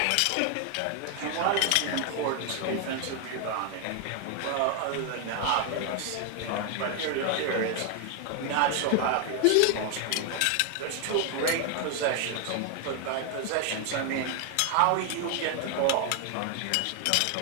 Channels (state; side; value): different; both; correlation 0.00